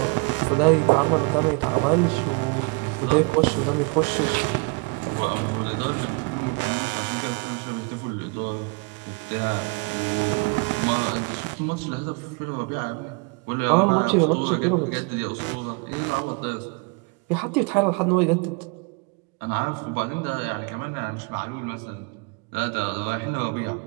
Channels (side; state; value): left; quieter; 29.8 dB